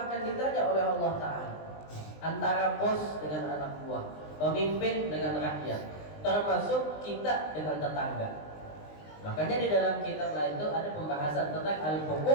akan ditanya oleh Allah Ta'ala. Antara bos dengan anak buah, pemimpin dengan rakyat, termasuk kita dengan tetangga. Makanya di dalam kitab lain itu ada pembahasan tentang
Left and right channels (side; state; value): right; late; 20 ms